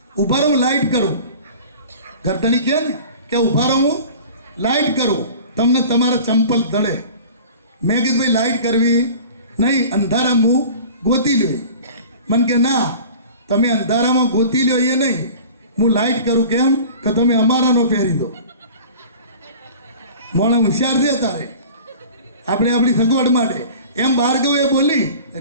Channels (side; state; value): both; inverted; correlation -0.41